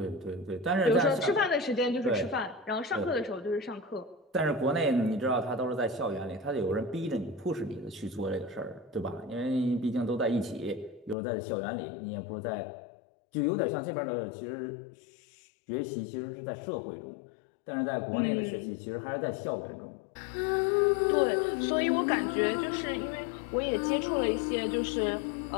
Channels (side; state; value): right; drops out; at 11.2 s